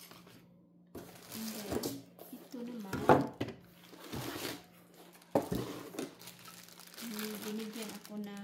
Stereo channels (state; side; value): identical; both; correlation 1.00